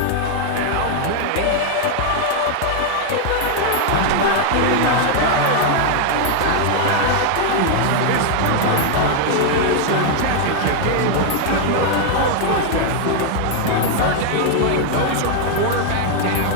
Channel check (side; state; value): both; different; correlation 0.00